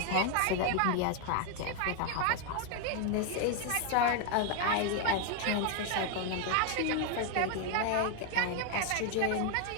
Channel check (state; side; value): different; both; correlation 0.00